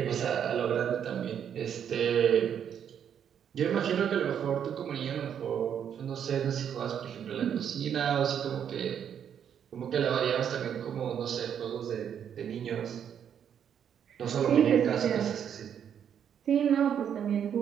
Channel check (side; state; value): left; quieter; 8.6 dB